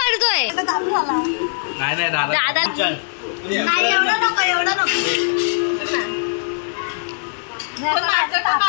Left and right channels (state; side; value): silent; right; digital silence